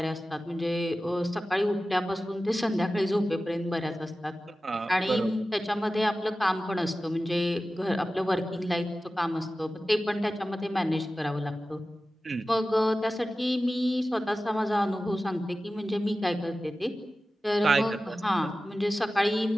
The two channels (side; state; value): both; normal; correlation 0.95